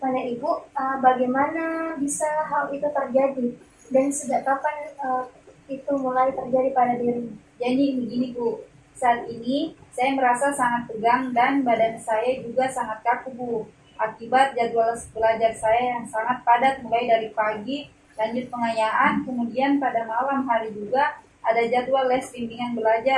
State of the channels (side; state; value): both; identical; correlation 1.00